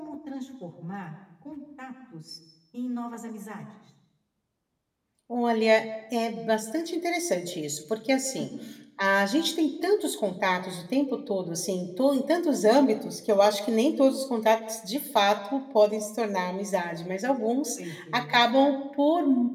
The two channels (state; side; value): identical; both; correlation 1.00